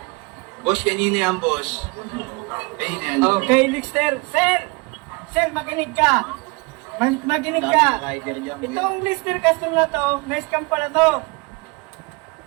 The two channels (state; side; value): quieter; left; 28.2 dB